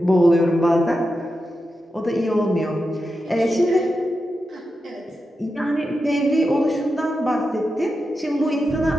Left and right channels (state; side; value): normal; both; correlation 0.89